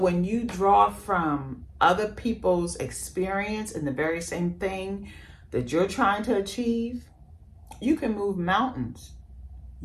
when you draw from other people's experience in the very same thing that you're trying to achieve, you can move mountains.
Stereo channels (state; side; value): identical; both; correlation 1.00